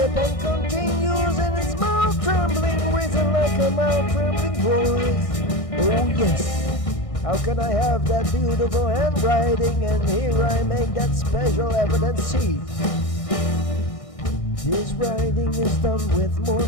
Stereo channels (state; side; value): late; right; 1.6 ms